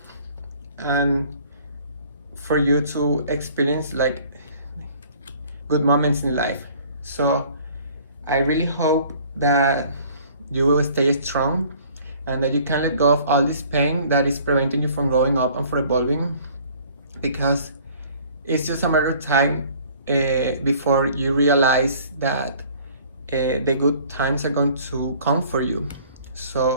and for you to experience like good moments in life. So I really hope that you will stay strong and that you can let go of all this pain that is preventing you from growing up and from evolving, because it's just a matter of time before you realize that the good times are going to come for you.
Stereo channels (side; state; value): both; inverted; correlation -0.53